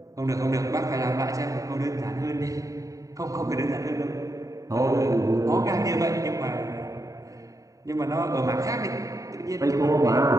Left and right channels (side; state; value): left; late; 0.16 ms